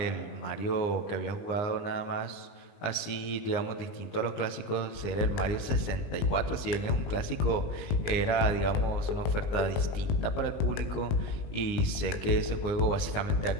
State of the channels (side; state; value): right; late; 19 ms